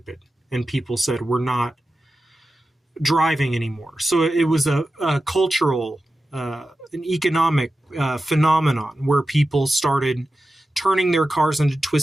And people said, we're not driving anymore. So it was a cultural, an economic phenomenon where people started turning their cars into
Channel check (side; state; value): both; normal; correlation 0.93